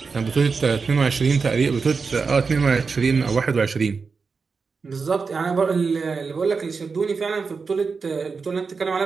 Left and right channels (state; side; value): quieter; left; 4.9 dB